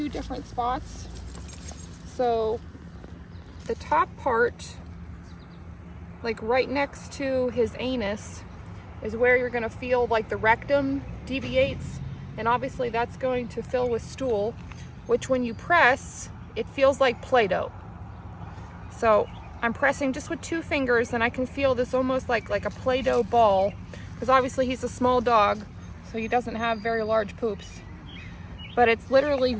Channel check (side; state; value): both; identical; correlation 1.00